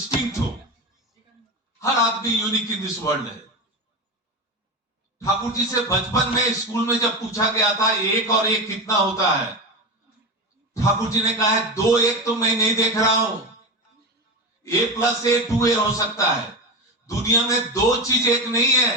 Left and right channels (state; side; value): normal; both; correlation 0.21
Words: हो। हर आदमी यूनिक इन दिस वर्ल्ड है। ठाकुर जी से बचपन में स्कूल में जब पूछा गया था 1 और 1 कितना होता है, ठाकुर जी ने कहा है 2 1 तो मैं नहीं देख रहा हूं, A + A 2A हो सकता है। दुनिया में 2 चीज एक नहीं